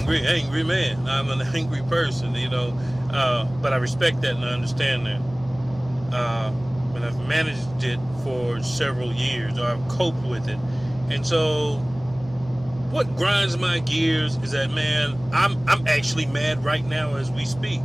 man. I'm an angry person, but I respect that and I understand that. And I've managed it for several years, or I've coped with it. And so what grinds my gears is that, man, I'm actually mad right now as we speak.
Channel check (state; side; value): noise; left; hum, 18 dB below the sound